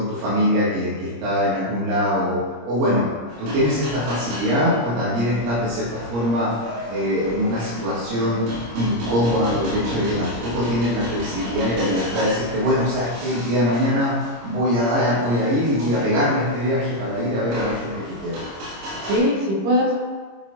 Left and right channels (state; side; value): late; left; 26 ms